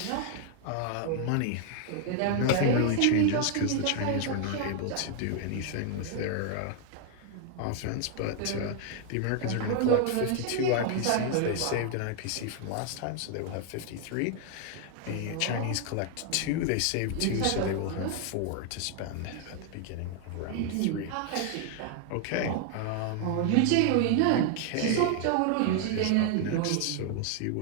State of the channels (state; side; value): different; both; correlation 0.00